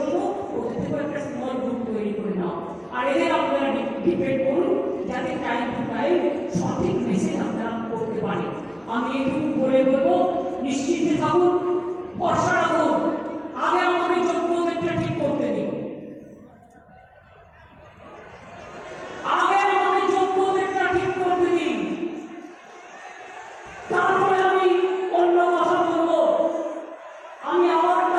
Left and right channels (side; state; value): both; identical; correlation 1.00